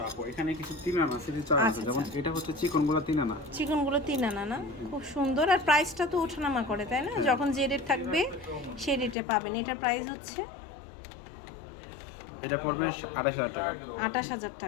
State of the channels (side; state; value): right; drops out; at 9.2 s